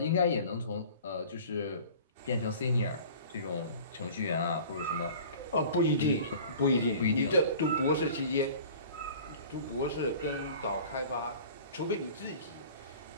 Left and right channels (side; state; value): both; inverted; correlation -0.43